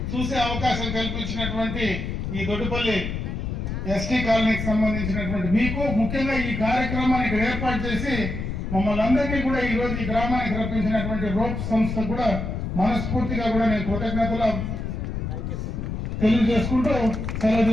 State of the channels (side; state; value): left; noise; rumble, 4 dB below the sound